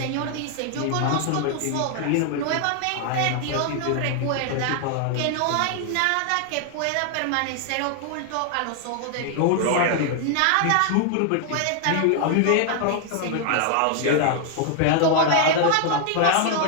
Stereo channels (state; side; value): different; both; correlation 0.00